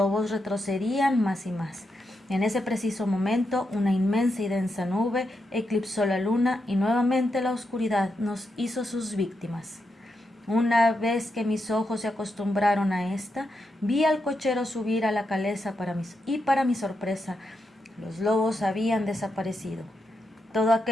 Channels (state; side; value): normal; both; correlation 0.84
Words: retrocedían más y más. En ese preciso momento, una inmensa y densa nube eclipsó la luna y nuevamente la oscuridad nos hizo sus víctimas. Una vez que mis ojos se acostumbraron a esta, vi al cochero subir a la caleza para mi sorpresa, los lobos habían desaparecido. Todo